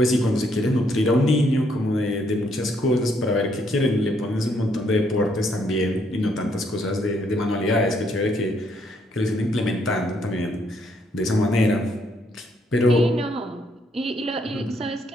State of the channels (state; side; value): normal; both; correlation 0.71